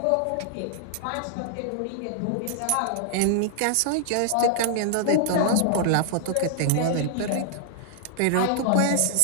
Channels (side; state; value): both; different; correlation -0.01